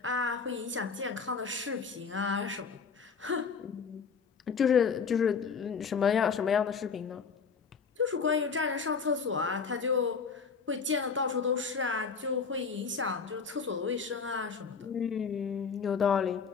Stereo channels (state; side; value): quieter; right; 5.7 dB